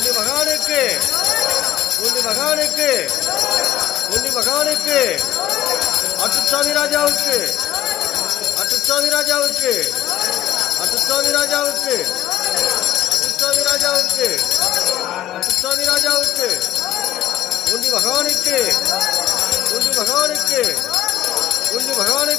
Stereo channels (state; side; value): quieter; right; 13.4 dB